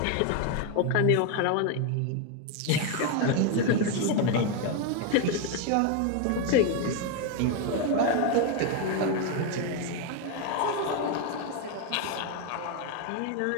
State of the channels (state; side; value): different; both; correlation 0.01